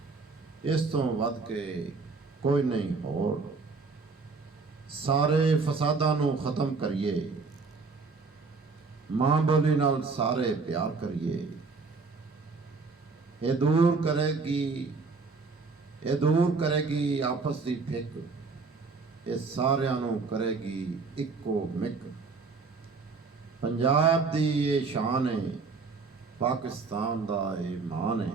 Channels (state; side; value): quieter; left; 4.4 dB